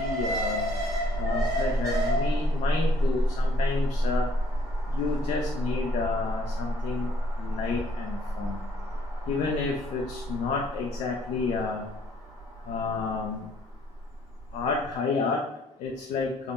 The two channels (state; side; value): normal; both; correlation 0.63